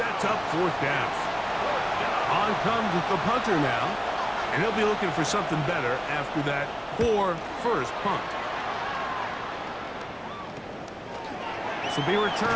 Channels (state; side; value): identical; both; correlation 1.00